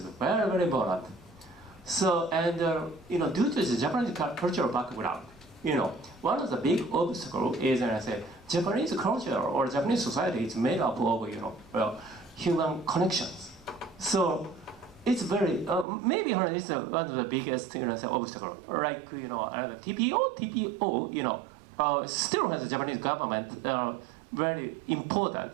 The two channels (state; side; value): drops out; left; at 15.9 s